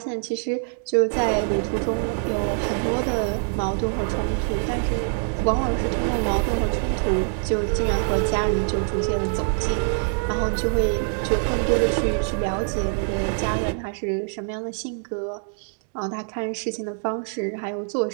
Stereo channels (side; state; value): left; silent; 62 dB below the other